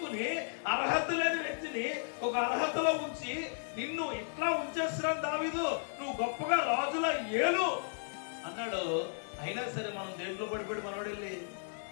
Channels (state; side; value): silent; right; digital silence